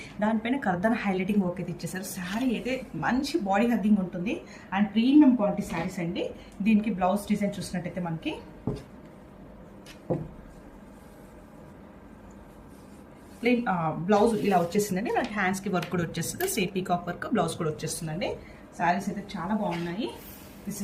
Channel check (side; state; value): both; identical; correlation 1.00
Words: దానిపైన కర్దానా హైలైటింగ్ వర్క్ అయితే ఇచ్చేసారు. శారీ అయితే మంచి బాడీ హగ్గింగ్ ఉంటుంది అండ్ ప్రీమియం క్వాలిటీ శారీస్ అండి. దీనికి బ్లౌజ్ డిజైన్ చూసినట్టయితే మనకి ప్లెయిన్ బ్లౌజ్ ఇలా వచ్చేసిందండి. మనకి హ్యాండ్స్కి వర్క్ కూడా వచ్చేస్తుంది. సేమ్ పీకాక్ వర్క్ బ్లౌజ్ కూడా వచ్చేస్తుందండి. శారీస్ అయితే చాలా బాగున్నాయి. This